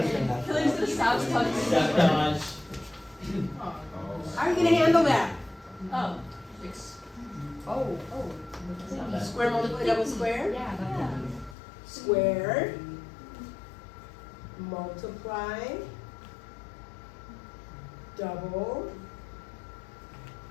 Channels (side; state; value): right; drops out; at 11.6 s